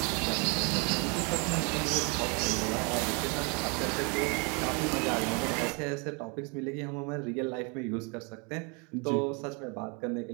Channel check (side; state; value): left; quieter; 32.8 dB